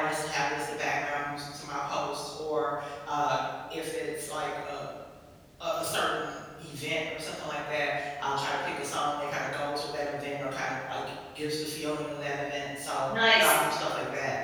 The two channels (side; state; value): both; identical; correlation 1.00